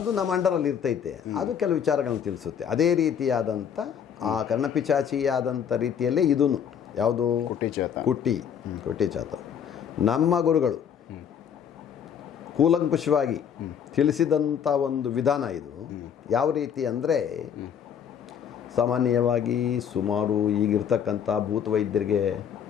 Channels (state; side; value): quieter; right; 8.2 dB